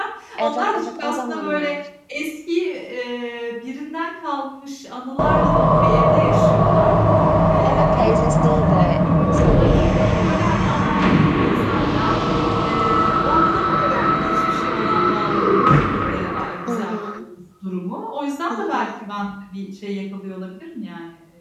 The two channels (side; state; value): both; identical; correlation 1.00